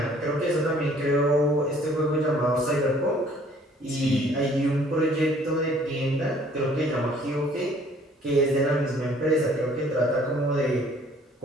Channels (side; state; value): both; normal; correlation 0.57